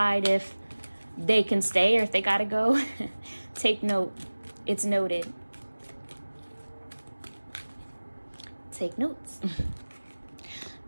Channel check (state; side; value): inverted; both; correlation -1.00